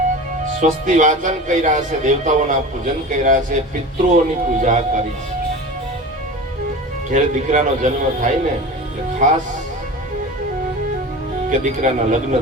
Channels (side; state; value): both; normal; correlation 0.33